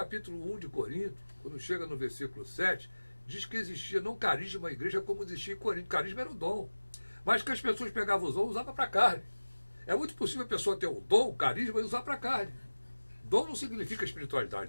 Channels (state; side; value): inverted; both; correlation -1.00